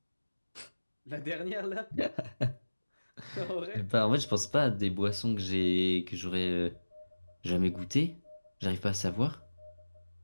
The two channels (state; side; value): inverted; both; correlation -1.00